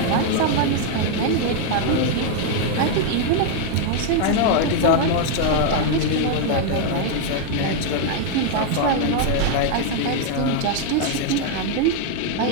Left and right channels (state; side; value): different; both; correlation 0.00